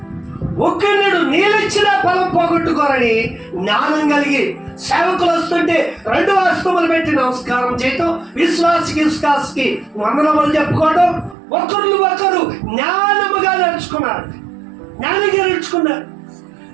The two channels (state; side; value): drops out; left; at 11.4 s